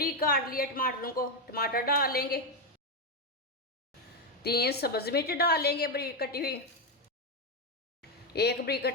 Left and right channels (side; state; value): both; normal; correlation 0.06